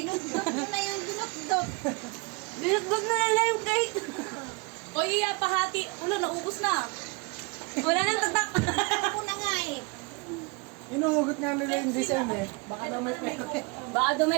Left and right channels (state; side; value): quieter; left; 29.0 dB